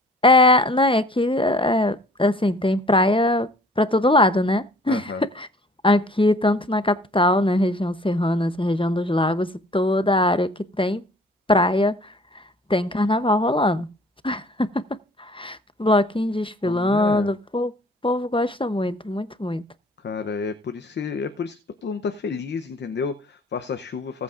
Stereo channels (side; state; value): both; normal; correlation 0.51